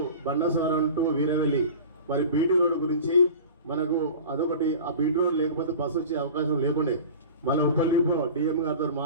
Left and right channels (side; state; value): both; inverted; correlation -0.37